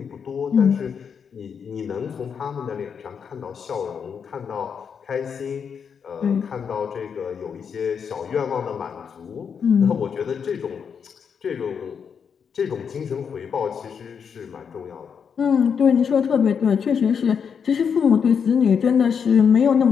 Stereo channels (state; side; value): quieter; right; 6.8 dB